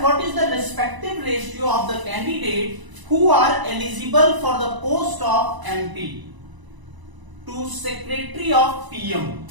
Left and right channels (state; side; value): late; left; 1.0 ms